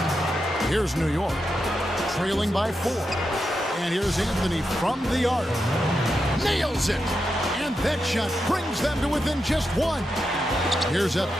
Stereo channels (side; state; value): both; normal; correlation 0.87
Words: Here's New York, trailing by 4. And here's Anthony from the arc. Nails it! And that shot brings them to within just 1. Here's